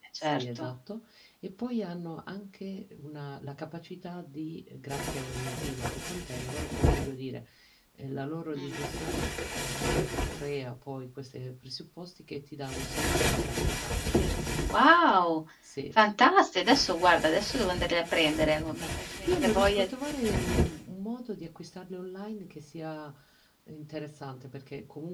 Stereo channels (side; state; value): both; identical; correlation 1.00